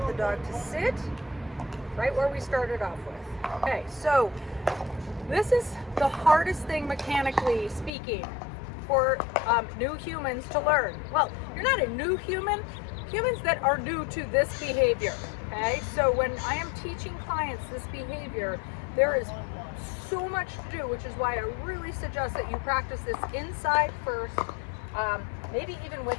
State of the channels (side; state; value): right; drops out; at 7.9 s